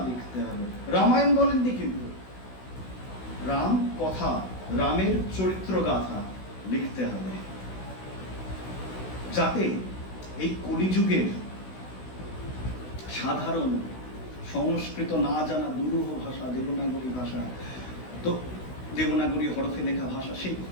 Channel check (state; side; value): late; right; 16 ms